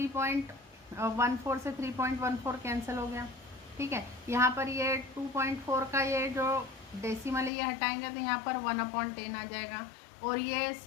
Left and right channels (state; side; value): drops out; right; at 7.5 s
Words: से 3.14 कैंसिल हो गया, ठीक है। यहाँ पर ये 2.4 का ये जो डेसिमल है ये हटाएंगे तो यहाँ पर 1/10 आ जाएगा और ये